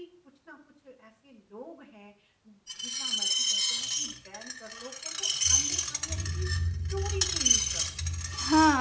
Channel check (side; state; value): both; identical; correlation 1.00